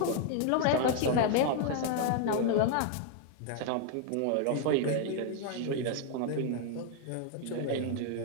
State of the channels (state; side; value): different; both; correlation 0.00